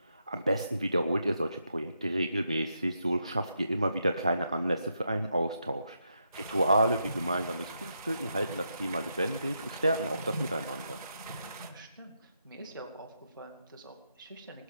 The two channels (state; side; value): inverted; both; correlation -0.81